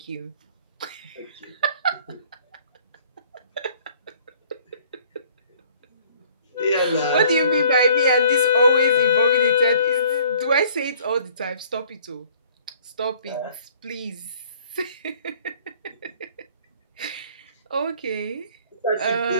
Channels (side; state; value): both; inverted; correlation -0.56